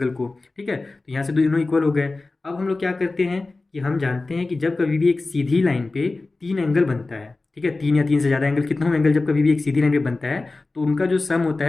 को। ठीक है, तो यहाँ से दोनों इक्वल हो गए। अब हम लोग क्या करते हैं कि हम जानते हैं कि जब कभी भी एक सीधी लाइन पे तीन एंगल बनता है, ठीक है, तीन या तीन से ज़्यादा एंगल, कितना एंगल जब कभी भी एक सीधी लाइन पे बनता है तो उनका जो सम होता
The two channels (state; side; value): quieter; right; 3.4 dB